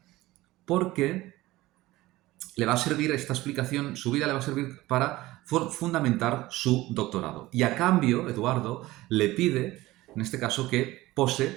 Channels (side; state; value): left; quieter; 18.1 dB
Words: porque le va a servir esta explicación, su vida le va a servir para fundamentar su doctorado. Y a cambio, Eduardo le pide, en este caso, que